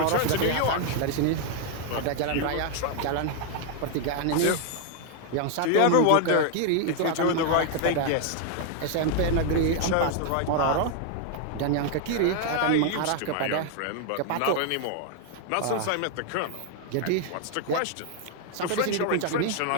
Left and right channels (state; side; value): different; both; correlation 0.00